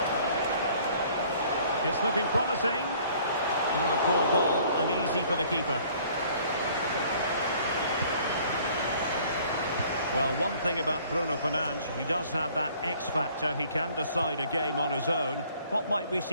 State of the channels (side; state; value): both; inverted; correlation -0.56